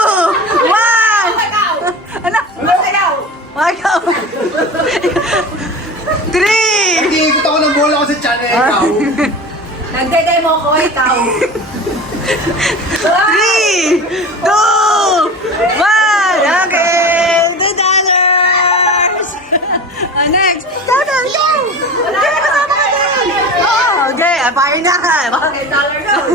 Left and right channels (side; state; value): both; normal; correlation 0.32